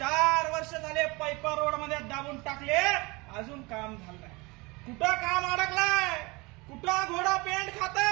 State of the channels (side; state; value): left; quieter; 25.2 dB